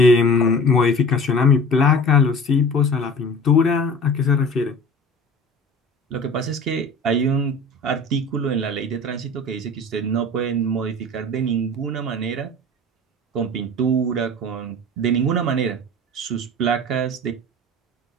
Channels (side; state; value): both; normal; correlation 0.40